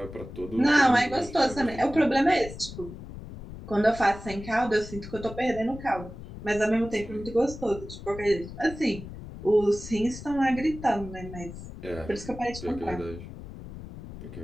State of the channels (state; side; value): noise; left; rumble, 13 dB below the sound